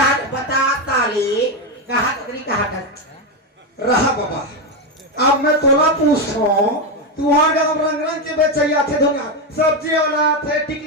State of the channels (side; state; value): both; normal; correlation 0.09